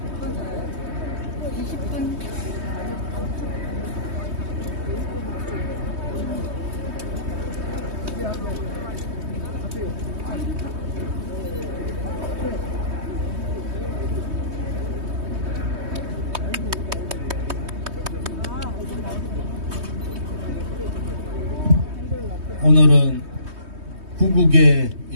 20분. 오늘은 구국의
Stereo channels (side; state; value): left; late; 3.2 ms